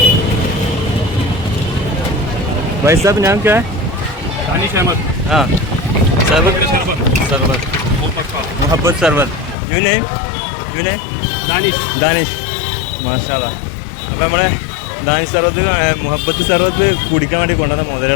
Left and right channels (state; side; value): drops out; right; at 9.6 s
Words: भाई साहब नाम क्या है? दानिश अहमद. हाँ सरबत. सरबत मोहब्बत सरबत. You name Danish. മാഷാല്ലാ. അപ്പോൾ നമ്മളെ ദാനിഷ് സർബത്ത് മുഹബത്ത് സർബത്ത് കുടിക്കാൻ വേണ്ടി കൊണ്ടുവന്ന